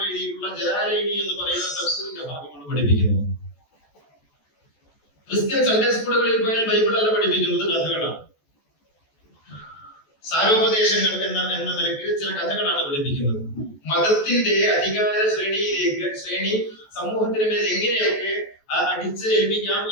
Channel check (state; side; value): late; right; 14 ms